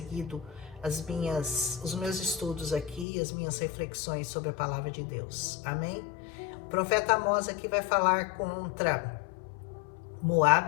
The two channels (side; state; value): right; drops out; at 3.1 s